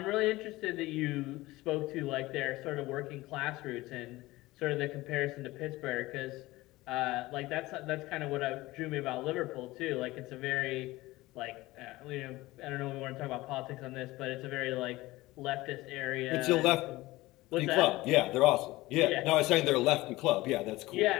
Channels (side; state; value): right; quieter; 19.1 dB